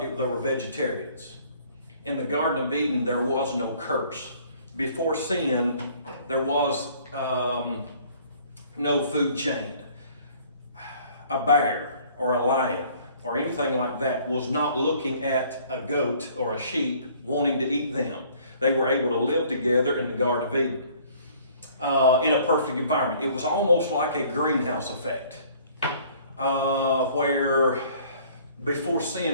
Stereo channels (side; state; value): both; inverted; correlation -0.56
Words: were vegetarians. In the Garden of Eden, there was no curse. Before sin, there was no food chain. A bear or a lion or anything like that was not looking at a goat or a sheep wanting to eat them. They were able to live together in the Garden of Eden in a perfect environment. It was almost like a greenhouse effect where before